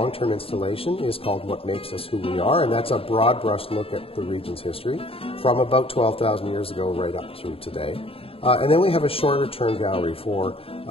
installation, is called What Makes Us Who We Are, and that's a broad brush look at the region's history from about 12,000 years ago right up through today. And then we have a shorter term gallery for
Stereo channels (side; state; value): right; late; 0.27 ms